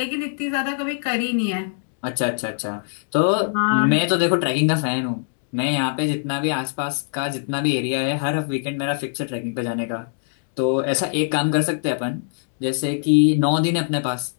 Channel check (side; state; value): right; silent; digital silence